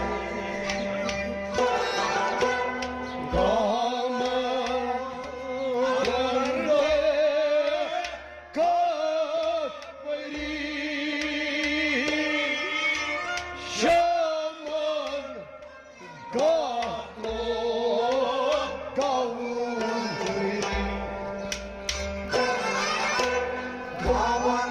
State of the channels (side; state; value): both; identical; correlation 1.00